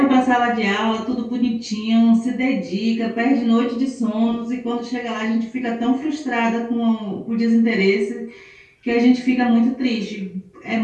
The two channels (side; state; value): both; identical; correlation 1.00